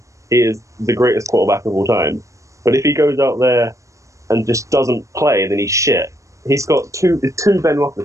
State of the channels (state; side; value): late; left; 0.15 ms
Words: he is the greatest quarterback of all time. But if he goes out there and just doesn't play, then he's shit. He's got two Ben